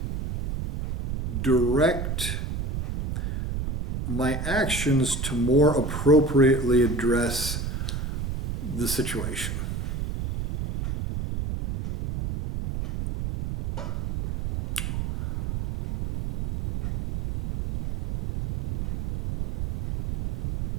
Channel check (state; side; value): noise; right; rumble, 4 dB below the sound